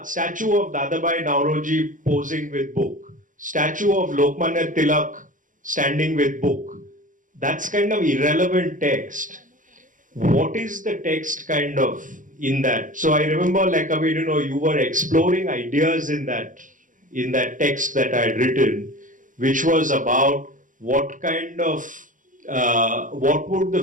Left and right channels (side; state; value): left; late; 0.38 ms